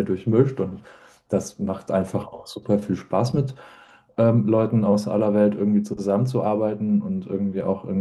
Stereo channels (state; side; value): identical; both; correlation 1.00